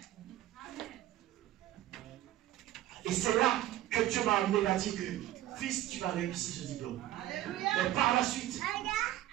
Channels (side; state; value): left; quieter; 13.8 dB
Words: Et c'est là que Dieu m'a amené à dire que, fils, tu vas réussir ce diplôme. Alléluia. Mais par la suite,